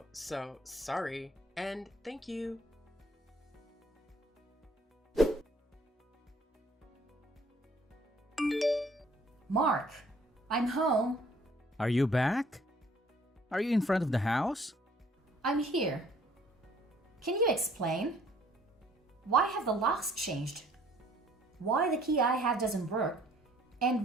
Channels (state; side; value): normal; both; correlation 0.59